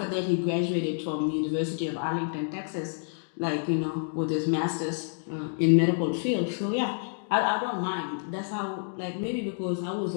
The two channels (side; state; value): right; silent; digital silence